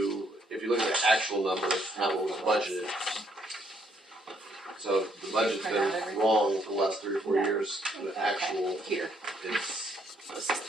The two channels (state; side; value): normal; both; correlation 0.70